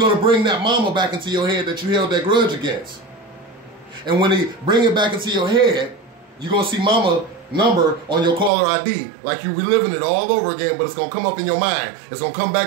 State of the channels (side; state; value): left; drops out; at 8.5 s